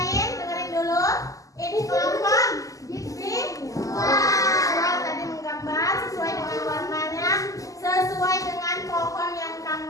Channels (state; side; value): late; right; 0.16 ms